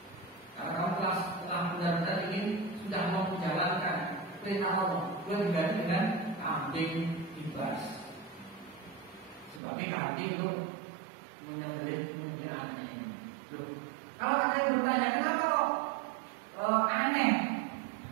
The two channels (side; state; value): left; drops out; at 9.6 s